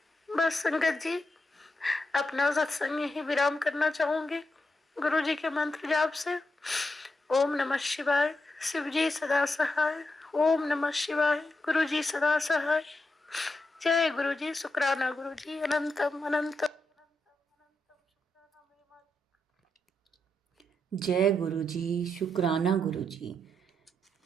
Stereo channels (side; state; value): both; normal; correlation 0.85